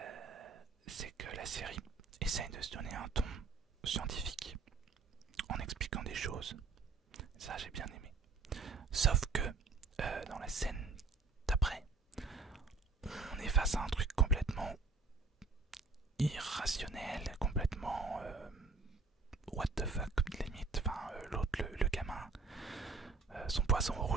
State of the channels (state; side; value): quieter; left; 4.2 dB